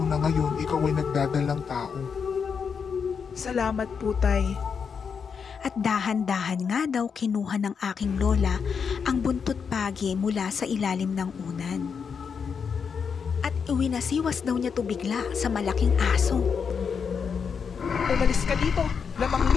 na ngayon ikaw ay nagdadalang tao. Salamat po, Tay. At dahan-dahan nga daw kinuha ng aking lola ang buntot pagi mula sa ilalim ng unan. At iwinasiwas daw niya to bigla sa malaking aso. Umalis ka dito, lamang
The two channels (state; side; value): quieter; right; 6.3 dB